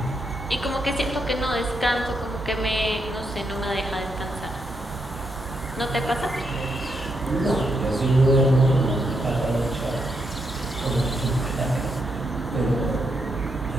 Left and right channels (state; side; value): normal; both; correlation 0.80